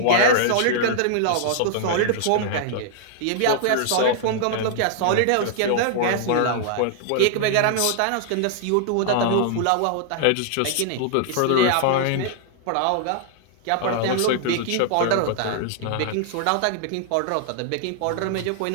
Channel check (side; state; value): both; different; correlation -0.01